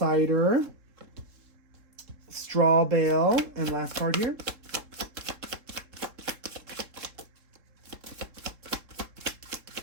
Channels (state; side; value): late; left; 3.7 ms